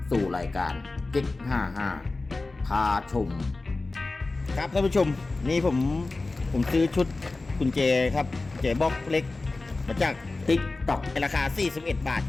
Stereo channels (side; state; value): right; quieter; 3.4 dB